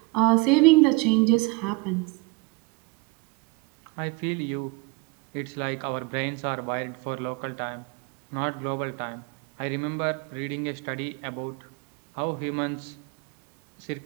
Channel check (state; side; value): quieter; left; 26.5 dB